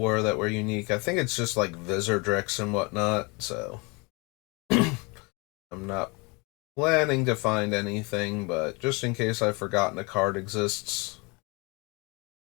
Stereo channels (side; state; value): right; quieter; 28.7 dB